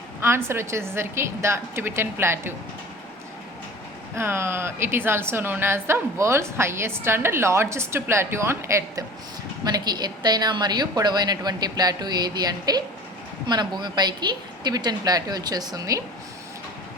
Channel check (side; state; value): both; normal; correlation 0.40